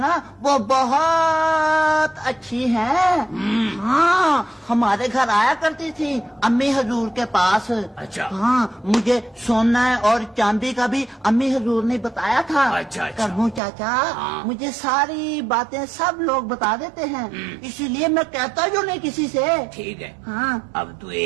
वो बहुत अच्छी है। हाँ, हमारे घर आया करती थी अम्मी हजूर के पास। अच्छा। हाँ, मुझे सोना और चांदी का भी अम्मी हजूर ने बताया था। अच्छा, अच्छा। करमू चाचा, हाँ। मुझे सारी बातें सब लोग बता देते हैं, इसीलिए मैं कहता जो नहीं किसी से। ठीक है। हाँ। अब तू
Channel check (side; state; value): left; drops out; at 13.6 s